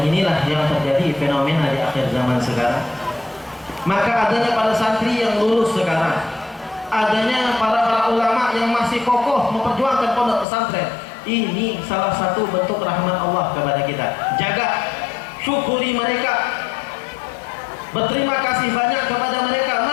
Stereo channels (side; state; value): right; drops out; at 10.5 s